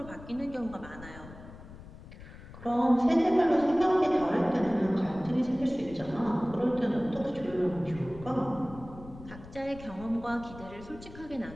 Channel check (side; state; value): left; noise; rumble, 16 dB below the sound